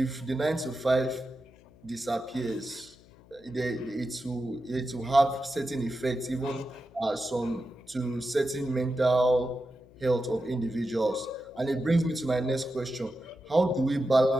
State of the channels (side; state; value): left; noise; hum, 25 dB below the sound